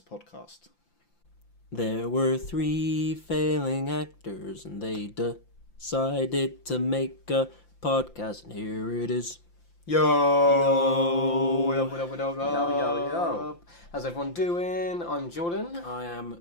podcast. There were 3 failing actors and they decided to make a podcast, and here it is. Yo! What up, what up, what up, Yo. How's everyone doing? I'm Jordan. I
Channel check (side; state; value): right; late; 5.8 ms